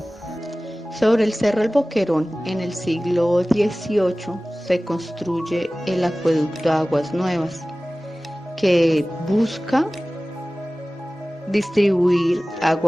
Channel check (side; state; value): both; normal; correlation 0.97